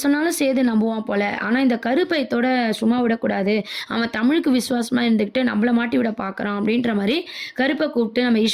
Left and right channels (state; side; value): identical; both; correlation 1.00